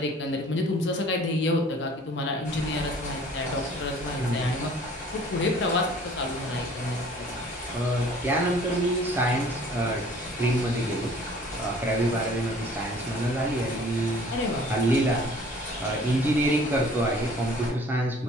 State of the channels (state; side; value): normal; both; correlation 0.51